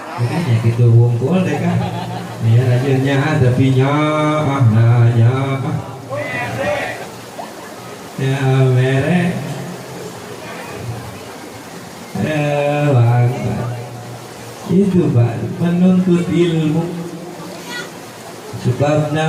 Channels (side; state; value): both; identical; correlation 1.00